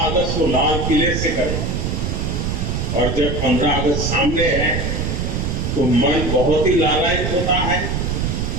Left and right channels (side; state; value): right; noise; rumble, 1 dB below the sound